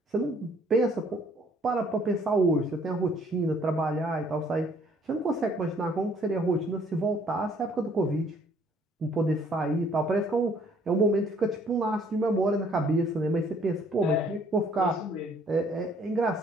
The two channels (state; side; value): normal; both; correlation 0.62